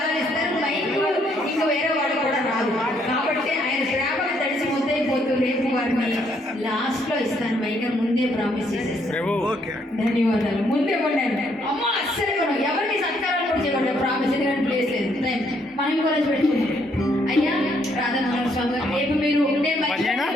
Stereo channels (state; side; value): normal; both; correlation 0.71